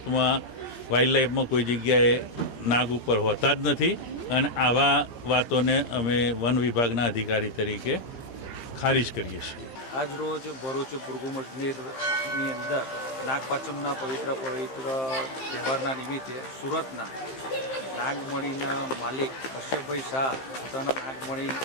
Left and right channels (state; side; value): late; right; 15 ms